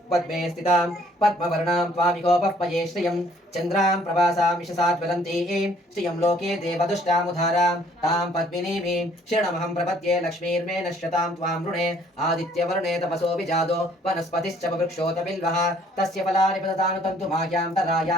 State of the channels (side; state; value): both; normal; correlation 0.61